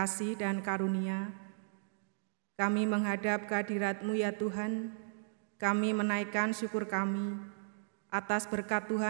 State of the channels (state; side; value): silent; left; digital silence